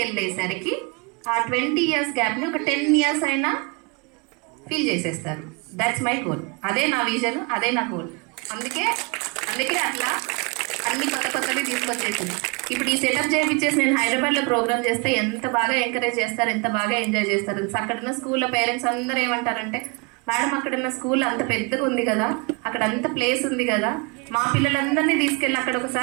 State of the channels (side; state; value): left; quieter; 30.1 dB